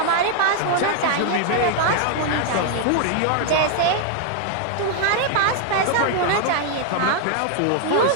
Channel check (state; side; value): different; both; correlation 0.00